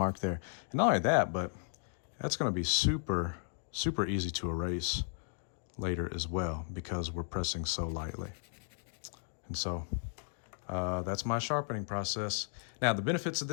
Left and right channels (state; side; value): silent; right; digital silence